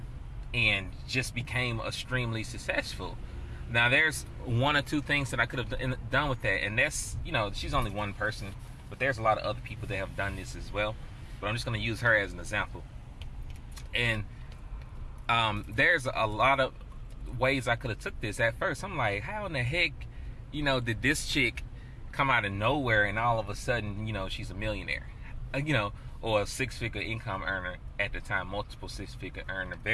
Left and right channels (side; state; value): both; identical; correlation 1.00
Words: and just became extremely successful. Now, there's one or two things that I could have done with that, and that's, she's only one person, but there's a lot of other people that have done this as well. But I'm just going to use her as an example. And there's a lot of ways I could have took this. At first, I'm like, how in the heck, did this chick come out of nowhere and all of a sudden, she's a millionaire, or a six-figure income earner at the time, multiple six-figure earner,